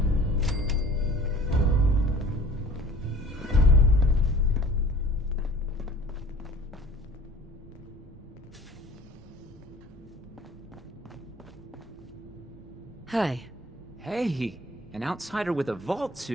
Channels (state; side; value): normal; both; correlation 0.47